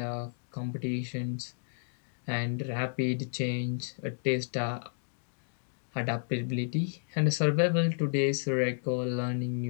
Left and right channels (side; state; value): right; silent; digital silence